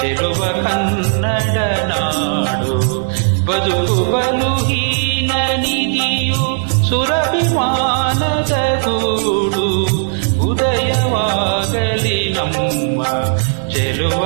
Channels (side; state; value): left; silent; digital silence